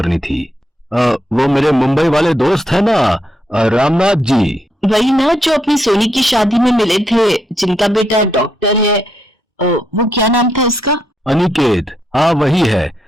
थी। वो मेरे मुंबई वाले दोस्त है ना, रामनाथ जी। वही ना जो अपनी सोनी की शादी में मिले थे, जिनका बेटा डॉक्टर है। वो क्या नाम था उसका? अनिकेत। हाँ वही है।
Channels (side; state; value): both; normal; correlation 0.79